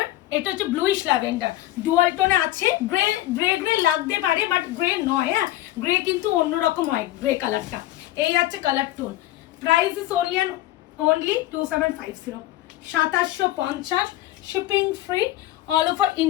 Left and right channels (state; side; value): quieter; right; 15.4 dB